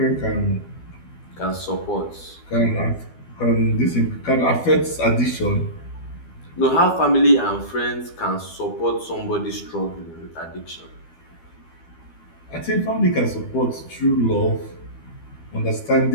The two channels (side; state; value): right; late; 12 ms